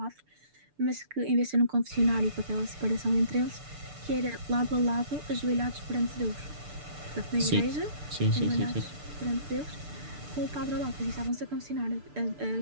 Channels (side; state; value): left; late; 6.8 ms